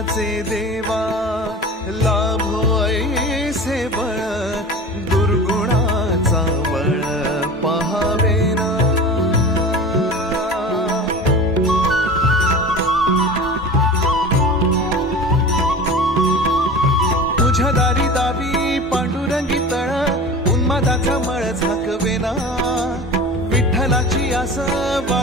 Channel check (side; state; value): both; normal; correlation 0.35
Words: देवा लाभो ऐसे बळ, दुर्गुणाचा बळ पहावेना। तुझ्या दारी दावी पांडुरंगी तळ, उन्मादाचा मळ झाकवेना, विठ्ठलाची आस